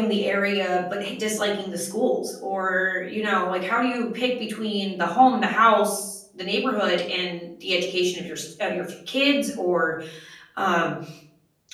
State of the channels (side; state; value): both; identical; correlation 1.00